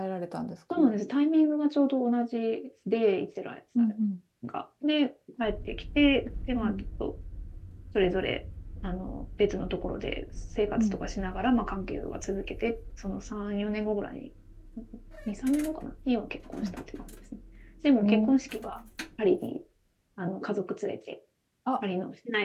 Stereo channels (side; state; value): both; identical; correlation 1.00